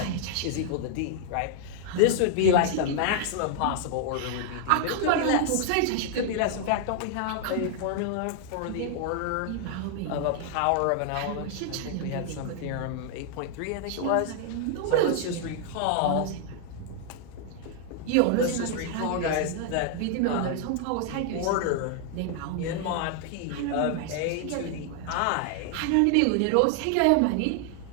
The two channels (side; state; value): both; different; correlation 0.00